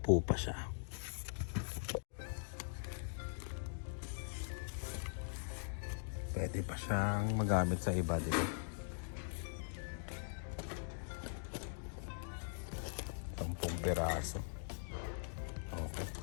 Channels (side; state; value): right; silent; digital silence